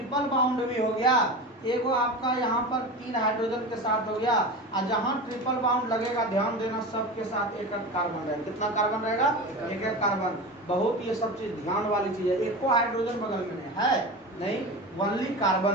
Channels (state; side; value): normal; both; correlation 0.28